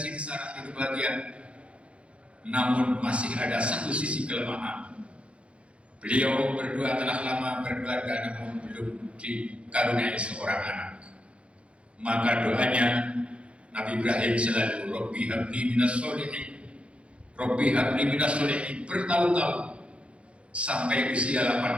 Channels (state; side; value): late; left; 0.061 ms